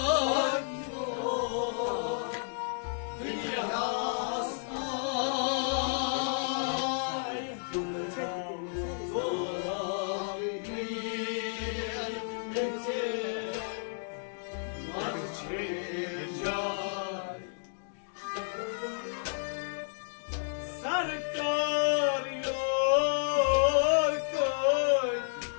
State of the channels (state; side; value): silent; right; digital silence